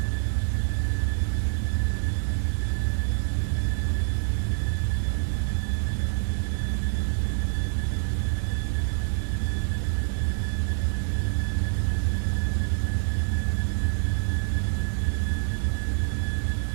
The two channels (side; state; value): left; silent; 61 dB below the other